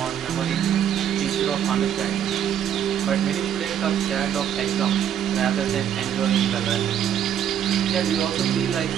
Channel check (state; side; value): quieter; left; 9.5 dB